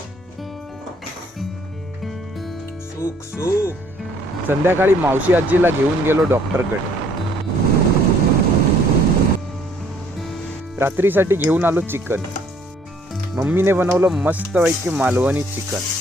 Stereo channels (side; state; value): both; normal; correlation 0.62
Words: सुख सुख. संध्याकाळी मावशी आजीला घेऊन गेलो डॉक्टरकडे. रात्रीसाठी घेऊन आलो चिकन. मम्मीने बनवलं मस्तपैकी मालवणी चिकन.